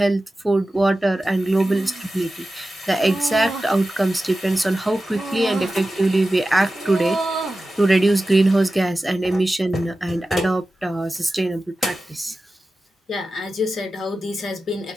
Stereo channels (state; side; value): normal; both; correlation 0.94